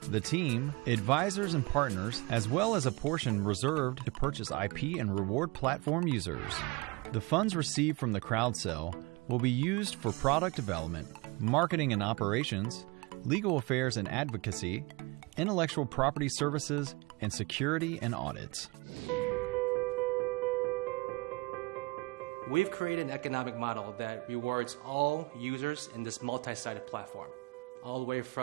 the team, advisors and partners, as well as a portion reserved to purchase IP and reward platform users. The funds received from the crowd sale will be used for product development, marketing and operations, legal affairs and advocacy, intellectual property services, and security and audits. We've created an economic model that rewards all users in this multi-sided platform, all the way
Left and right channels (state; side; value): quieter; left; 25.3 dB